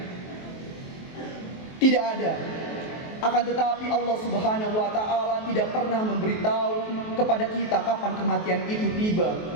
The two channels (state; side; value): late; right; 23 ms